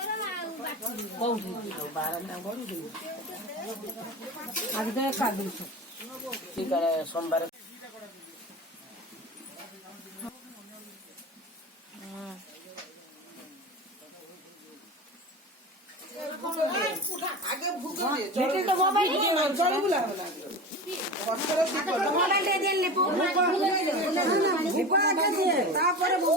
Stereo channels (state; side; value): normal; both; correlation 0.29